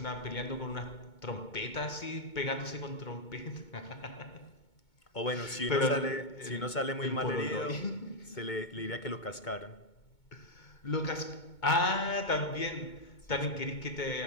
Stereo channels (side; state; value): right; late; 2.2 ms